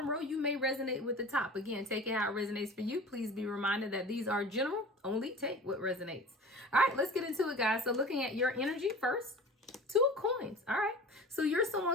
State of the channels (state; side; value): normal; both; correlation 0.39